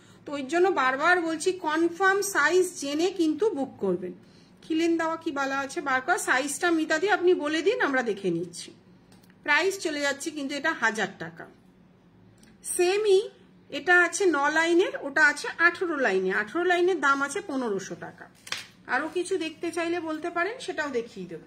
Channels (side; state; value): both; identical; correlation 1.00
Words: তো ওই জন্য বারবার বলছি কনফার্ম সাইজ জেনে কিন্তু বুক করবেন। খিলেন দেওয়া কি বলা আছে বার কর, সাইজটা মিতা দিয়ে আপনি বলে দিন, আমরা দেখে নিচ্ছি। প্রাইস চলে যাচ্ছে কিন্তু এটা 1000 টাকা। সেমই এটা আছে 9 লাইনের, ওটা আছে 18 লাইনে। 18 লাইনের দাম আছে 1500 টাকা। আরো কিছু দেখতে চাইলে বলতে পারেন, সেটাও দেখিয়ে